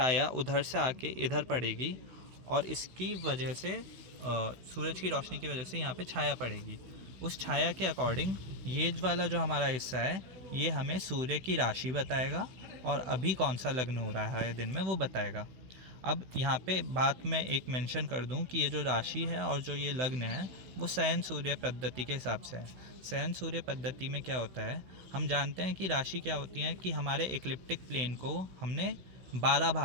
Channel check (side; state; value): left; late; 16 ms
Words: उधर से आके इधर पड़ेगी और इसकी वजह से सूरज की रोशनी की वजह से यहाँ पे छाया पड़ेगी, उस छाया के अकॉर्डिंग ये वाला जो हमारा हिस्सा है ये हमें सूर्य की राशि बताएगा और अभी कौन सा लग्न हो रहा है दिन में वो बताएगा। अब यहाँ पे बात मैं एक मेंशन कर दूँ कि ये जो राशि है और जो ये लग्न है वो शयन सूर्य पद्धति के हिसाब से है। शयन सूर्य पद्धति में क्या होता है, हम जानते हैं कि राशि क्या होती है कि हमारे इक्लिप्टिक प्लेन को हमने 12